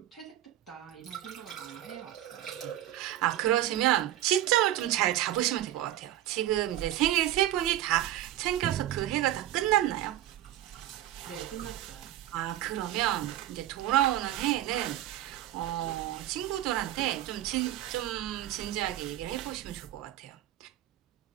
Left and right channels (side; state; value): left; quieter; 13.1 dB